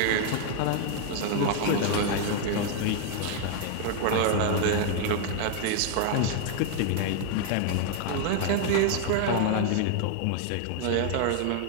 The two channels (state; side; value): different; both; correlation 0.00